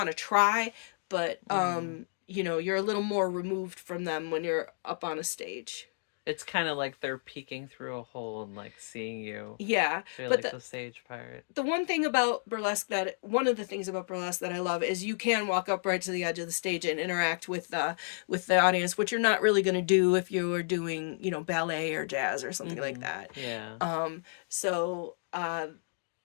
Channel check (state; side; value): silent; right; digital silence